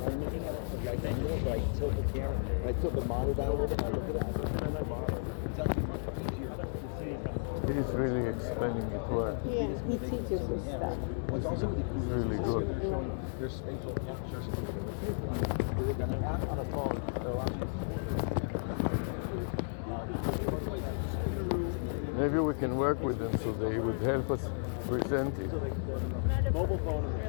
I'm looking at it from right angle, but I tilt the camera, and I tilt the monitor down a little bit, and I look at it, I'm looking at the monitor. It's actually much easier to see. He's really explaining it well. Yeah, he teaches us stuff. What's also really cool It's really good. There's spatial capture solution. We look at an app on a phone. It allows you Maybe we can work with them so they would help us present it. mobile phone and the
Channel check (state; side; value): silent; right; digital silence